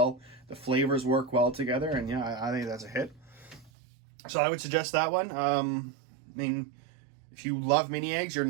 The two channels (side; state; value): left; drops out; at 3.7 s